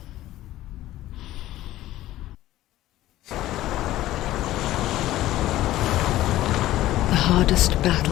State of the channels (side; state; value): right; quieter; 15.0 dB